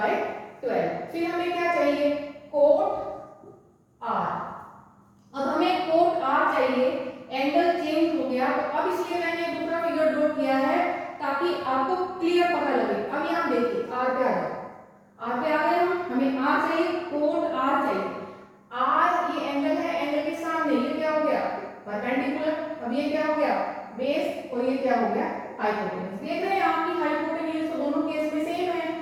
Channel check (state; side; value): identical; both; correlation 1.00